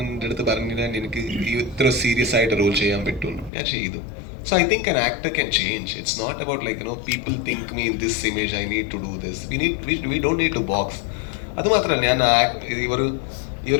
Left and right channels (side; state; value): right; drops out; at 3.5 s